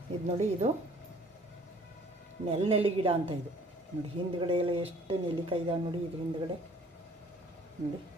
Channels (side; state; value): both; normal; correlation 0.55